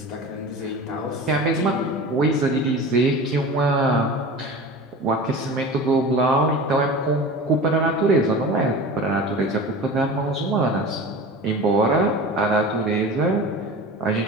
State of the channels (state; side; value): normal; both; correlation 0.34